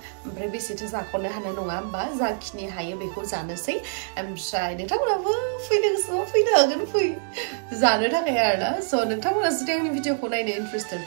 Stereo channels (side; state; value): left; silent; digital silence